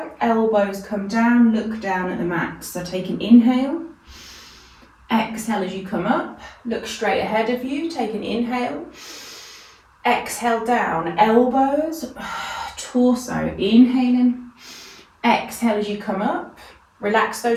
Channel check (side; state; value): both; identical; correlation 1.00